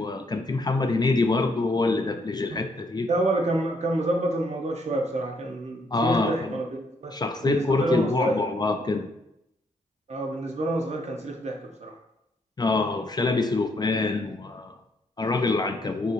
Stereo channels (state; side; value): normal; both; correlation 0.71